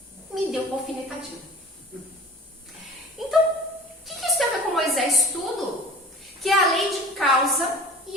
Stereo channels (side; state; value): both; normal; correlation 0.41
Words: me deu uma alfinetadinha. Então, o que isso tem a ver com Moisés? Tudo. Que é a lei de causa